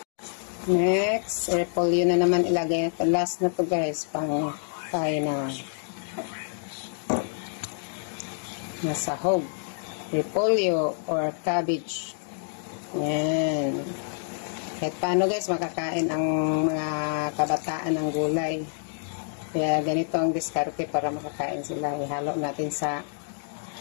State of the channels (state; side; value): silent; right; digital silence